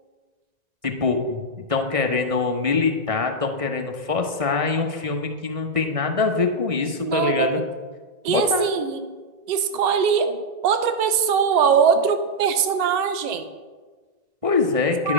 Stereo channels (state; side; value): late; left; 1.9 ms